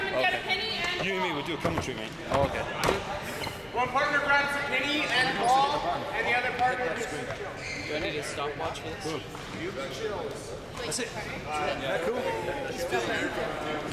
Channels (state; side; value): identical; both; correlation 1.00